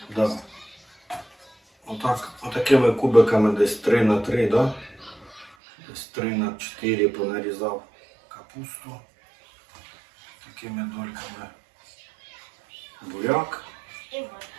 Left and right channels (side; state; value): left; drops out; at 5.6 s